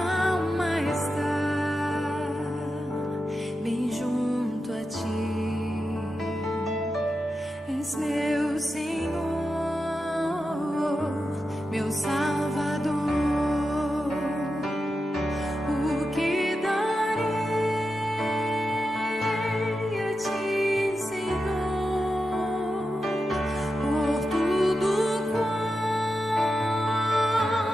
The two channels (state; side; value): normal; both; correlation 0.90